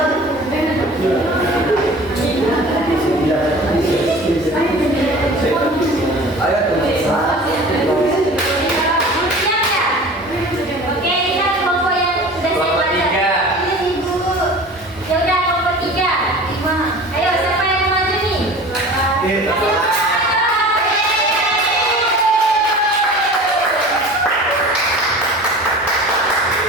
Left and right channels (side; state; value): both; normal; correlation 0.40